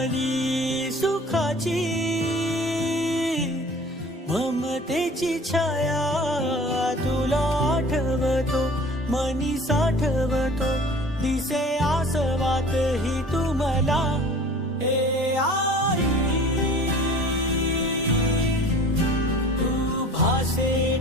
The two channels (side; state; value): both; normal; correlation 0.45